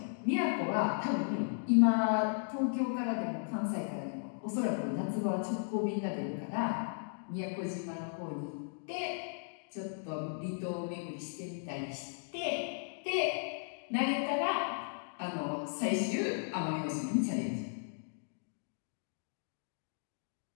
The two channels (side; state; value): right; silent; digital silence